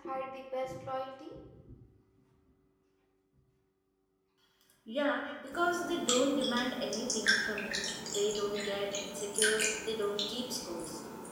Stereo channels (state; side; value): identical; both; correlation 1.00